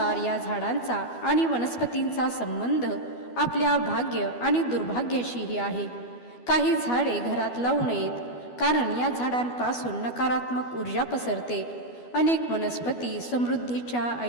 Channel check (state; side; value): late; right; 12 ms